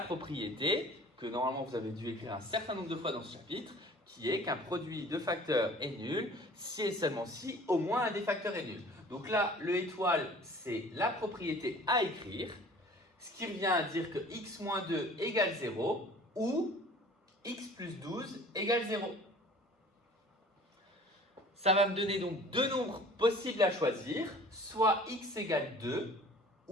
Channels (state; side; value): normal; both; correlation 0.47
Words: que normalement vous avez dû écrire un certain nombre de fois dans ce chapitre, qui est qu'un produit de facteurs est nul si et seulement si au moins un des facteurs est nul. Donc là, le étoile, c'est la propriété à écrire, ce qui revient à dire que x moins 2 égale 0 ou x plus 12 égale 0. Ça va me donner donc deux nombres possibles à choisir, soit x égale 2